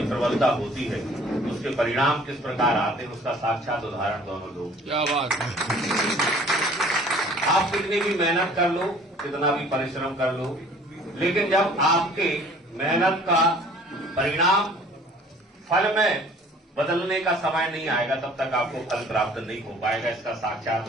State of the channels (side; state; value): both; normal; correlation 0.52